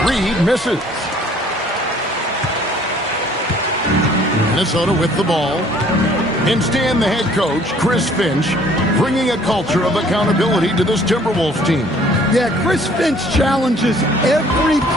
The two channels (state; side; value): normal; both; correlation 0.57